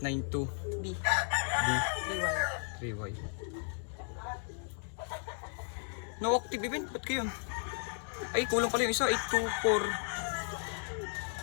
B. B 3Y. 3Y. No active event, ba't kayo? Ay, kulang pala yung isa,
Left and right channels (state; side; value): silent; right; 55 dB below the other